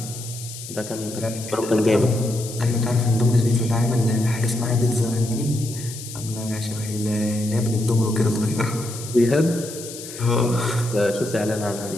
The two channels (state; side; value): noise; left; hiss, 12 dB below the sound